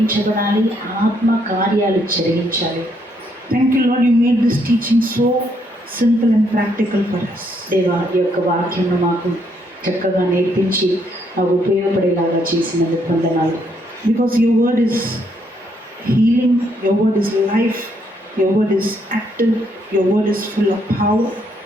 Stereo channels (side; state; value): both; normal; correlation 0.72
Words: ఆత్మ కార్యాలు జరిగించాలి. Thank you, Lord, you made this teaching so simple and practical for us. దేవా, ఈ యొక్క వాక్యం మాకు చక్కగా నేర్పించి మాకు ఉపయోగపడేలాగా చేసినందుకు వందనాలు. Because your word is healing, your word is life, your word is active, your word is full of power,